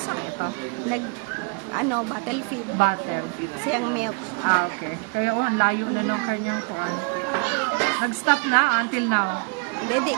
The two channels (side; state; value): left; quieter; 35.1 dB